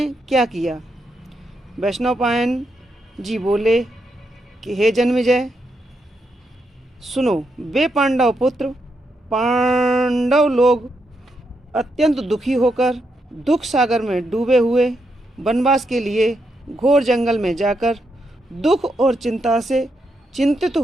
क्या किया? वैशंपायन जी बोले कि हे जन्मेजय, सुनो, वे पांडव पुत्र पांडव लोग अत्यंत दुखी होकर दुख सागर में डूबे हुए वनवास के लिए घोर जंगल में जाकर दुख और चिंता से चिंतित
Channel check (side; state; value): both; normal; correlation 0.81